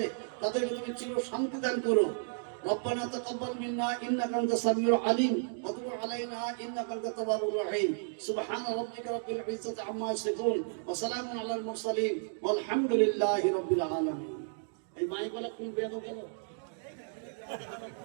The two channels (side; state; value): left; silent; digital silence